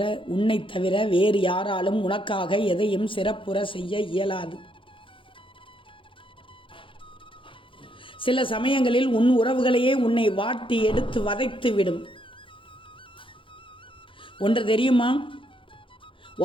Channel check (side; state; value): right; late; 0.25 ms